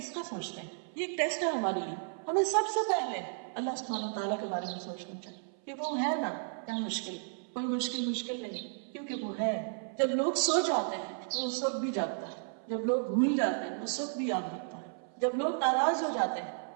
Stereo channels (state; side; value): silent; left; 56 dB below the other